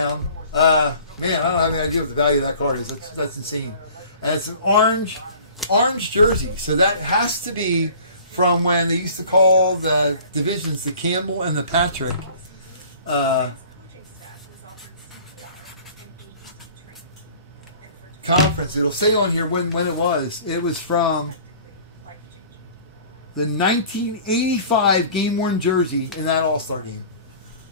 Man, I don't have any idea what the value of that card is. That's insane. And it's an orange jersey. So that has to be from when they used to call the divisions the Campbell and the Patrick. Coaching staff was offered CPR and AED training. And for Conference. It'll say on here when it was. It was from life-changing. the 1985 game-worn jersey in that All-Star game.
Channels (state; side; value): inverted; both; correlation -0.47